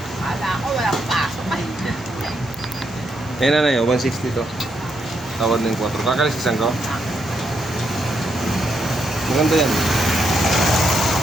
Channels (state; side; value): normal; both; correlation 0.79